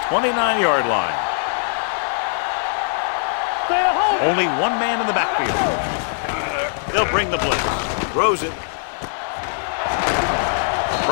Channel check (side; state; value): right; silent; digital silence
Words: 29-yard line. Only one man in the backfield. They'll bring the blitz. Throws it.